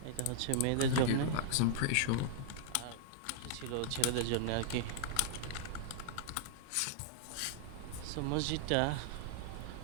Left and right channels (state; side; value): different; both; correlation -0.01